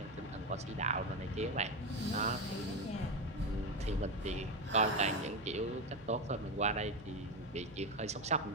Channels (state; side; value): noise; right; hum, 20 dB below the sound